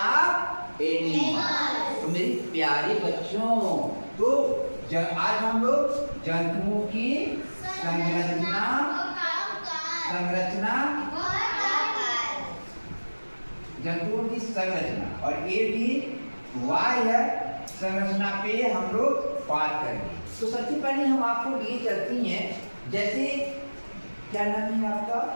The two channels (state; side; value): inverted; both; correlation -1.00